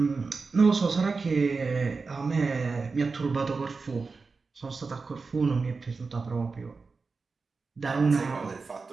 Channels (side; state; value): left; quieter; 4.4 dB